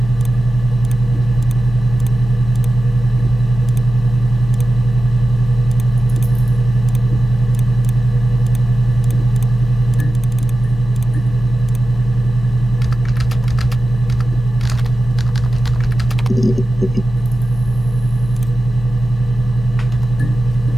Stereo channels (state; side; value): normal; both; correlation 0.94